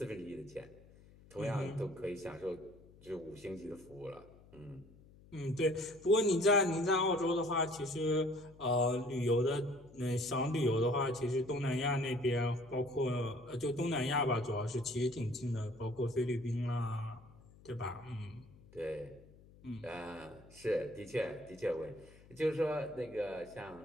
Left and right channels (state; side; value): noise; left; hum, 23 dB below the sound